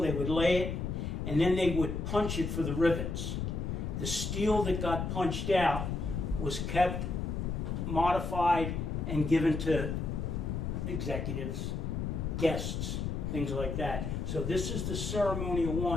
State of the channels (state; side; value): noise; left; rumble, 2 dB below the sound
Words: they would lay it, and then they would punch it for the rivets. The steel that got punched out was kept, modified, and given to executives, guests, things like that. So this is the ceremonial